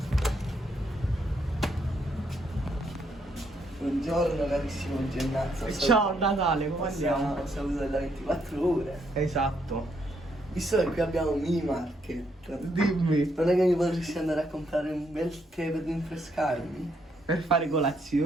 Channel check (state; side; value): normal; both; correlation 0.74